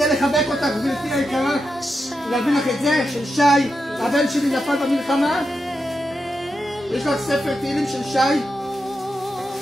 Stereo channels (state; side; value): normal; both; correlation 0.87